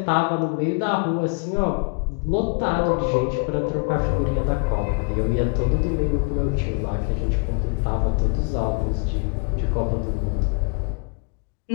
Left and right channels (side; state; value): right; quieter; 34.1 dB